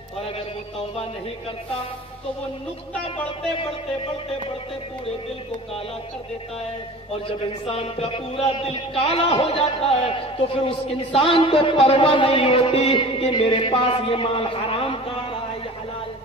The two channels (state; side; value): normal; both; correlation 0.39